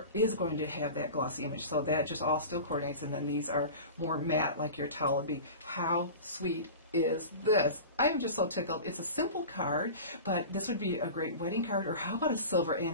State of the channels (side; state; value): both; inverted; correlation -0.34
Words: is going to have that glossy image. So that just all still coordinates, and then these are more matte like your towel would be. How sweet is this. I'm just so tickled. It's a simple card, but this would be a great wedding card, or how about a silver